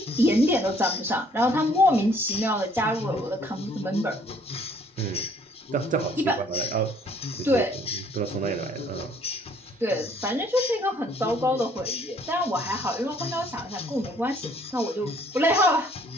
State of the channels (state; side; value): normal; both; correlation 0.61